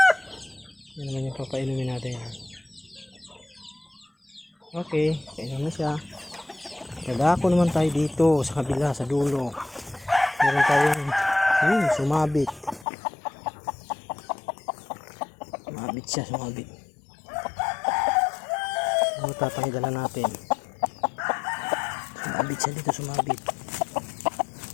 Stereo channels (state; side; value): drops out; right; at 12.9 s